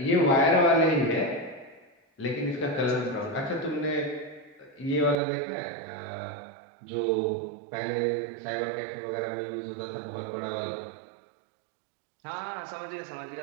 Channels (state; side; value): drops out; left; at 5.2 s